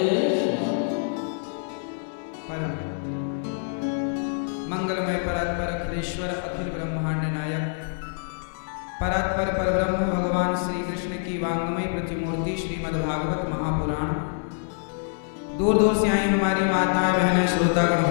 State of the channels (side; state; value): right; silent; 61 dB below the other